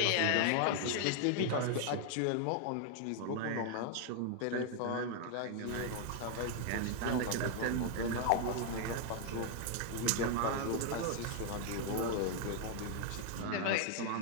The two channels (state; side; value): different; both; correlation 0.00